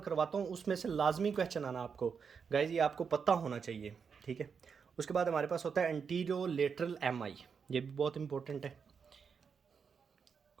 करवाता हूँ, उसमें से लाजमी क्वेश्चन आना आपको गाइज, ये आपको पता होना चाहिए, ठीक है। उसके बाद हमारे पास होता है एंटीरियो लेटरल MI, ये भी बहुत इंपॉर्टेंट है।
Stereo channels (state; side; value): quieter; left; 6.2 dB